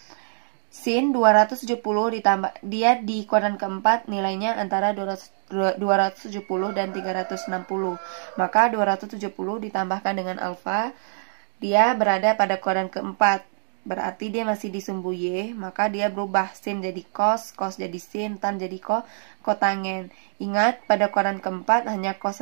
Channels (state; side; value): silent; left; digital silence